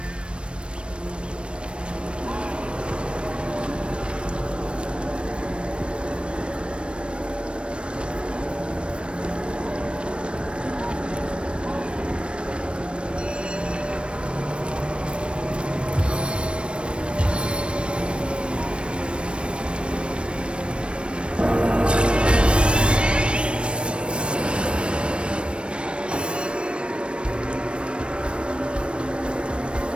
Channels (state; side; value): late; left; 0.058 ms